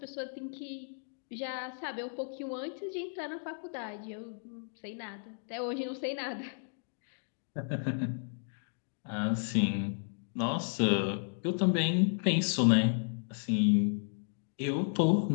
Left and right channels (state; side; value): silent; right; digital silence